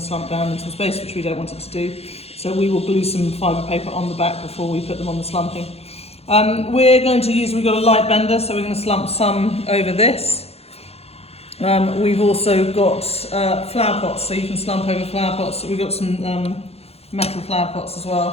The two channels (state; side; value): late; right; 0.29 ms